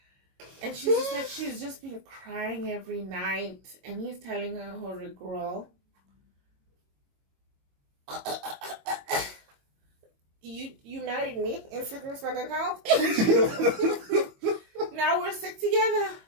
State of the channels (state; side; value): late; left; 21 ms